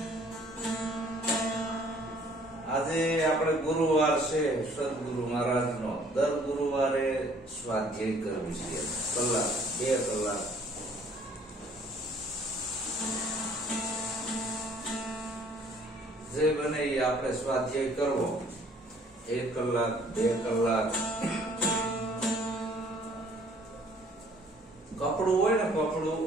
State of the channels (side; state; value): both; normal; correlation 0.58